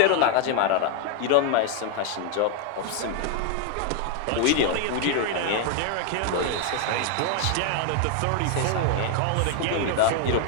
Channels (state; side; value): different; both; correlation 0.00